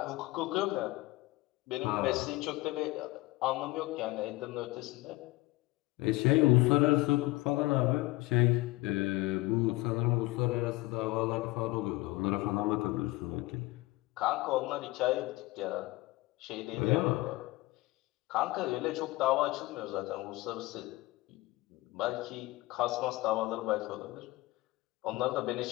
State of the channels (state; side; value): quieter; right; 20.6 dB